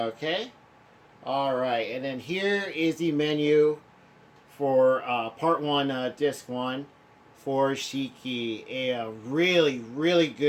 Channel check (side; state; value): both; identical; correlation 1.00